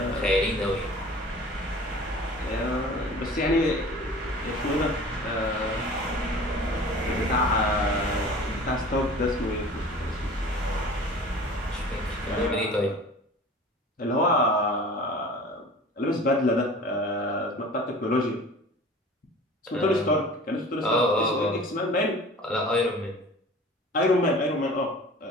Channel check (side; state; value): both; normal; correlation 0.42